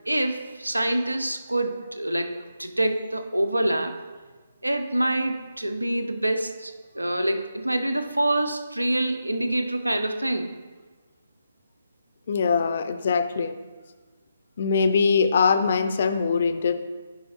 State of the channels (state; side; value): inverted; both; correlation -0.84